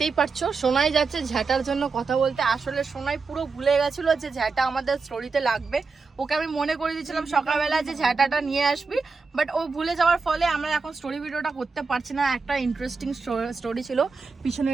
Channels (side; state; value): left; quieter; 4.6 dB